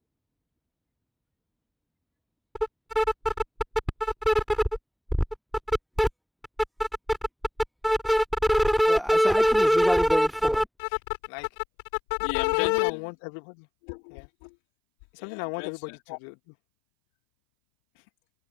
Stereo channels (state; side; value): drops out; right; at 10.7 s